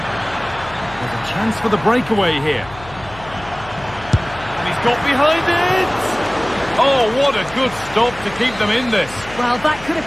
There's a chance for the breakaway here. And he's got behind it! Oh, what a good stop to keep them in this. Well, that could have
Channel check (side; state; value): left; noise; hum, 18 dB below the sound